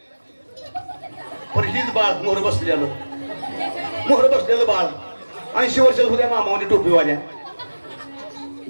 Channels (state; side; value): inverted; both; correlation -1.00